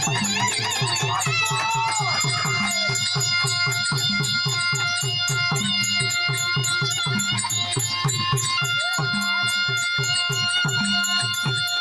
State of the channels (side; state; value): both; identical; correlation 1.00